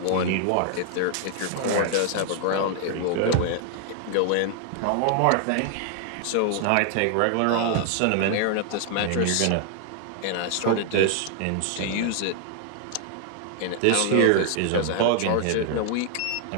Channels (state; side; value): different; both; correlation 0.00